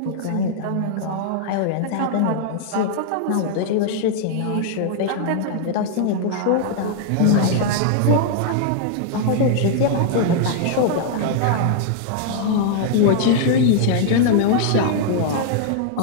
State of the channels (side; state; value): both; different; correlation -0.01